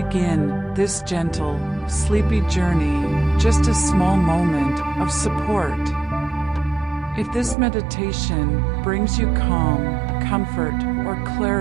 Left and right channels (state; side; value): drops out; left; at 7.6 s